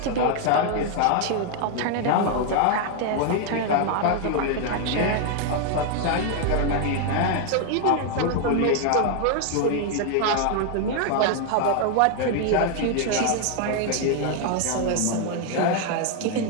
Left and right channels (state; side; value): different; both; correlation 0.00